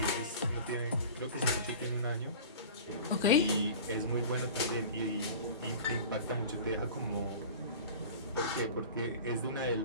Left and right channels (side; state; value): both; inverted; correlation -0.38